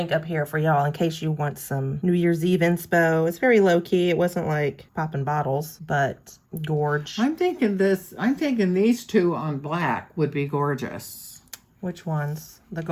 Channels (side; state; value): both; identical; correlation 1.00